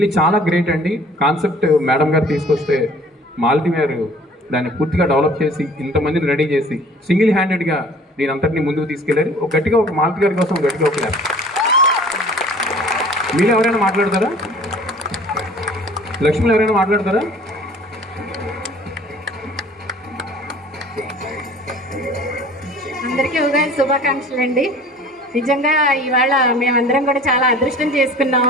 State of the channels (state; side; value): normal; both; correlation 0.49